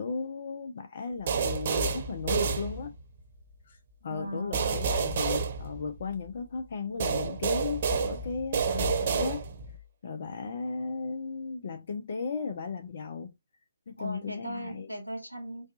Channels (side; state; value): both; inverted; correlation -0.66